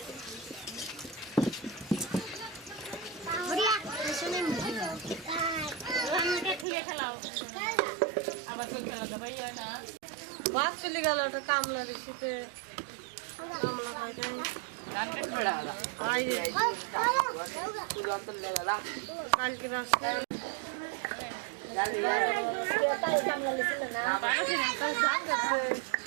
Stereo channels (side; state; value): left; drops out; at 6.7 s